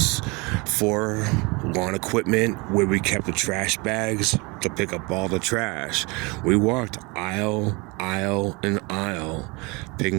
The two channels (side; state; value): left; quieter; 27.4 dB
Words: for lawn equipment, where we kept the trash bags to pick up all the trash. We walked aisle and aisle,